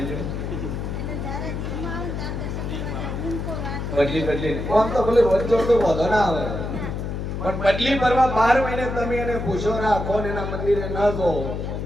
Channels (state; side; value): noise; left; hum, 4 dB below the sound